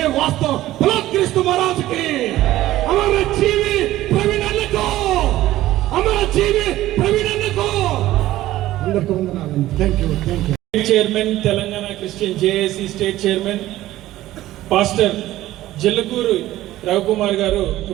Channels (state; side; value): quieter; left; 15.2 dB